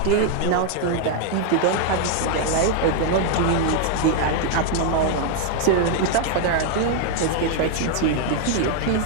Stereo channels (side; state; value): both; different; correlation 0.00